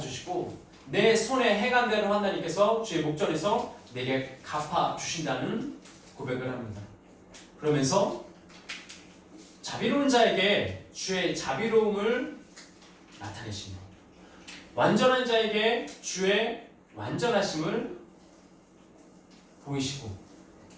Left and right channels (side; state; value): both; identical; correlation 1.00